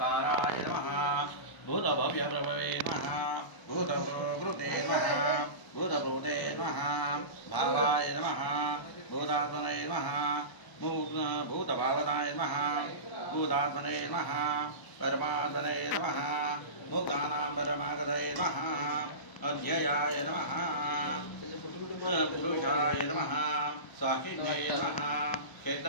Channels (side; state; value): right; late; 1.0 ms